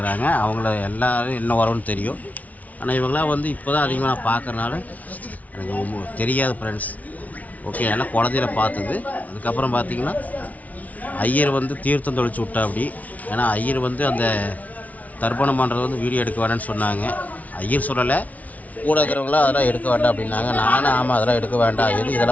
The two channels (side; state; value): right; late; 0.072 ms